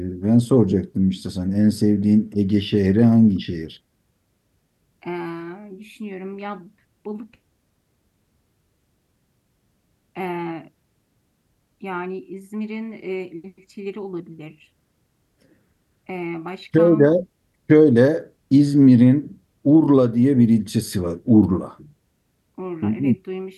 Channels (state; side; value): identical; both; correlation 1.00